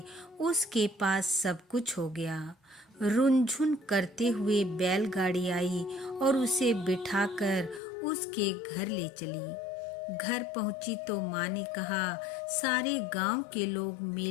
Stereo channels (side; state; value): right; drops out; at 7.8 s